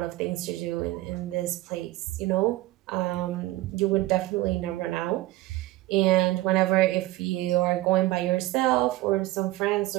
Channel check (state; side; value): quieter; left; 18.0 dB